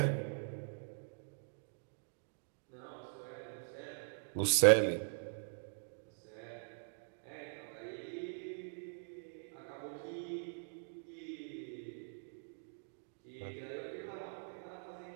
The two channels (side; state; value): left; silent; digital silence